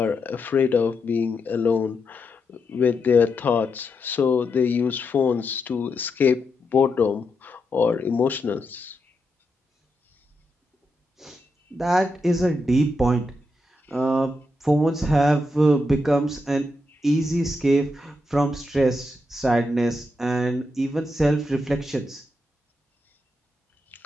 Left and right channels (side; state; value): both; normal; correlation 0.84